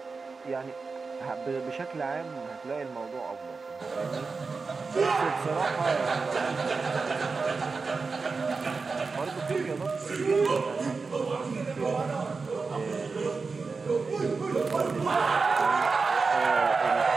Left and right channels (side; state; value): left; quieter; 4.5 dB